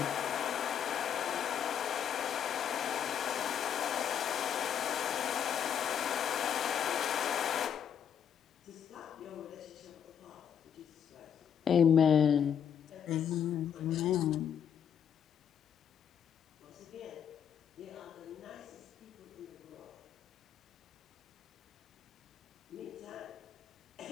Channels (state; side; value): quieter; right; 8.4 dB